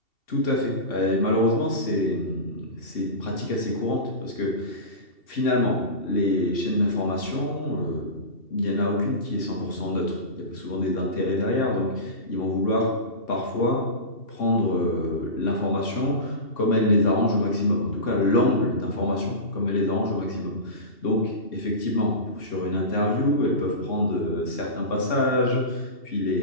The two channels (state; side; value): late; right; 2.7 ms